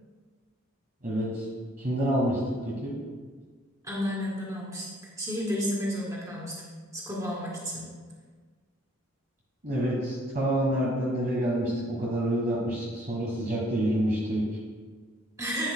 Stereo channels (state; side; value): normal; both; correlation 0.62